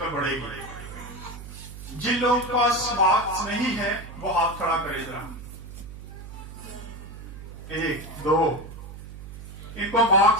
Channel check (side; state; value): right; noise; hum, 13 dB below the sound